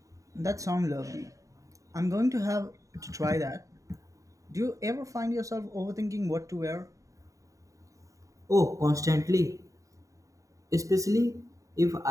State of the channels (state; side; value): late; left; 0.16 ms